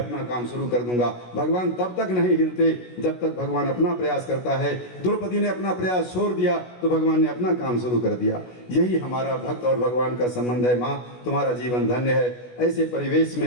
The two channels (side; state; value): right; late; 16 ms